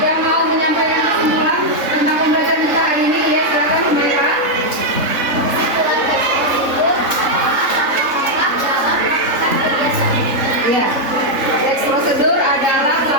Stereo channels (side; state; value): left; late; 3.7 ms